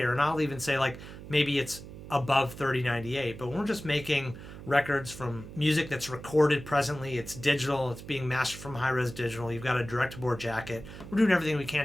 And I'll even say, like, maybe it's above 3098. But when we're just making records from music that's recorded presently, it's digital, it's being mastered from high-res digital, you've got a direct-to-board jacket, we're doing everything we can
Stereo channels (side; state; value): right; noise; hum, 13 dB below the sound